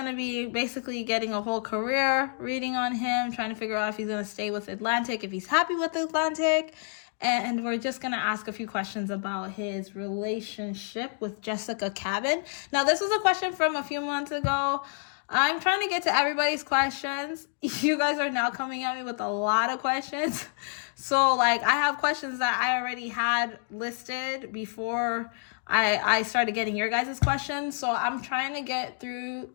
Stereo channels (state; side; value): silent; right; 59 dB below the other